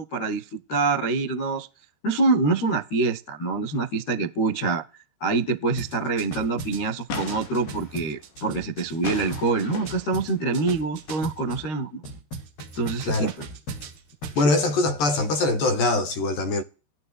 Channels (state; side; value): late; right; 14 ms